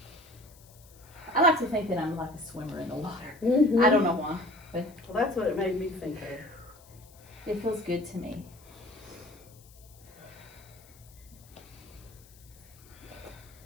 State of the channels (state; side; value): noise; left; hiss, 25 dB below the sound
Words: I like to think that I'm like a swimmer in the water. Mm-hmm. I don't know why, but Well, that's what it made me think of. it feels good to me.